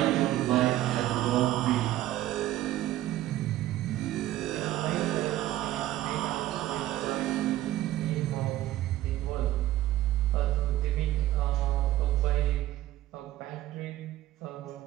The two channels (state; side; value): quieter; left; 14.5 dB